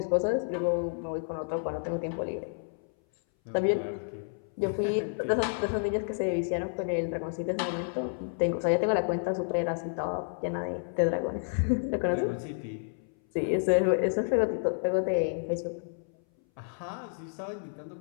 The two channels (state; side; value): silent; right; 58 dB below the other